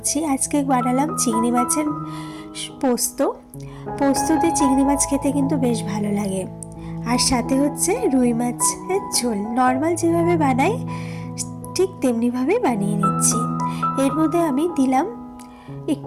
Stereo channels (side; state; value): both; identical; correlation 1.00